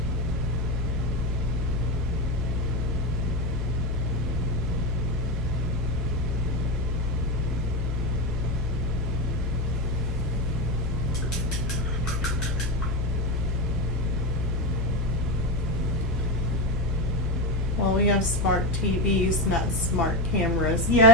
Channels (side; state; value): both; normal; correlation 0.16